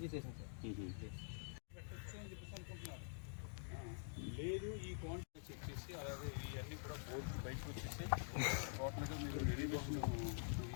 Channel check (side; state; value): right; silent; digital silence